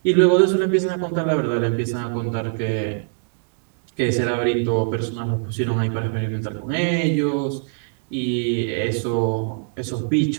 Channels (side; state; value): left; silent; digital silence